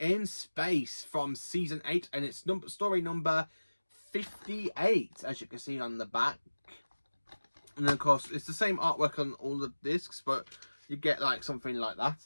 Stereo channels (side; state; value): both; inverted; correlation -1.00